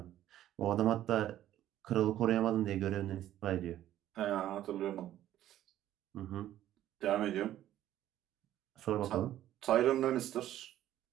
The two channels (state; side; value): quieter; left; 12.7 dB